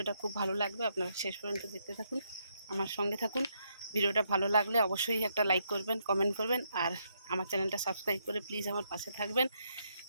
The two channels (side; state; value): both; inverted; correlation -0.76